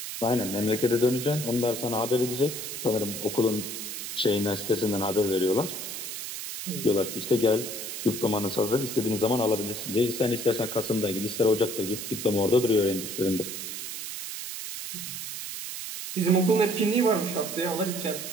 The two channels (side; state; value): right; noise; hiss, 7 dB below the sound